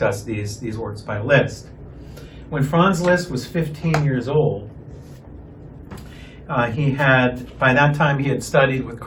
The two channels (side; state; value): both; identical; correlation 1.00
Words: these works by Liszt. When Franz Liszt was 15 years old, by that time he had studied with